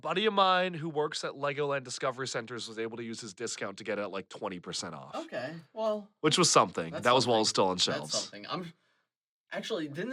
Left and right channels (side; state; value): both; identical; correlation 1.00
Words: of mine who works at Legoland Discovery Centers was able to use his discount to get it at like 20% off. Okay, well, Which was something. that's That was while it was something. still on That's shelves. something. Actually,